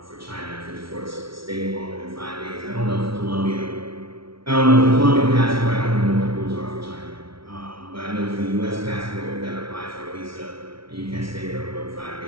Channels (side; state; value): left; late; 0.75 ms